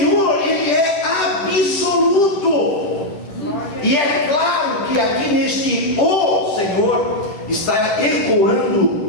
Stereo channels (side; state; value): right; late; 10 ms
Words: ele é absoluto. E é claro que aqui neste o Senhor está ecoando